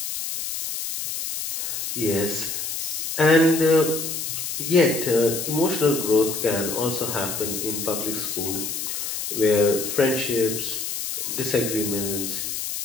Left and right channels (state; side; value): noise; left; hiss, 4 dB below the sound